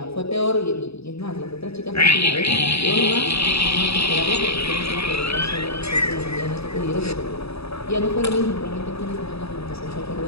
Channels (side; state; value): right; late; 0.78 ms